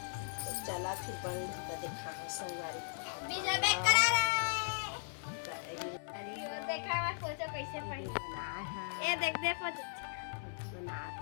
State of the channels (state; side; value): silent; right; 53 dB below the other